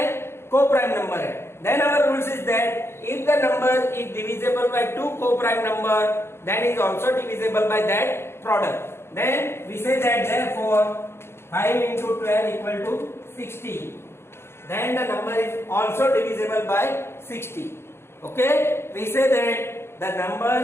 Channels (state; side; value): late; right; 0.12 ms